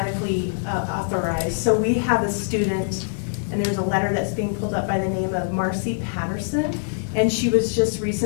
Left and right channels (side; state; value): right; silent; digital silence